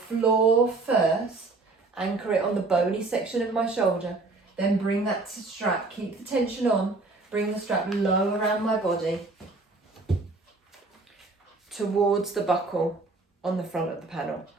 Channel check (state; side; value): quieter; left; 3.5 dB